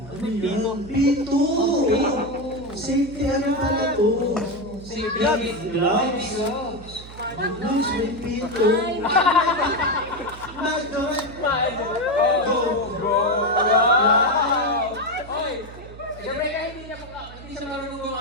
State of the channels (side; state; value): right; noise; hum, 16 dB below the sound